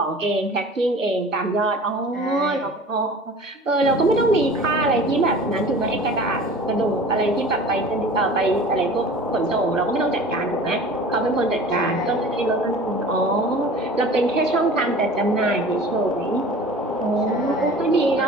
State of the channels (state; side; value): normal; both; correlation 0.42